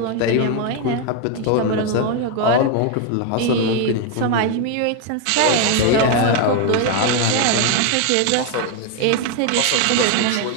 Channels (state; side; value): different; both; correlation 0.01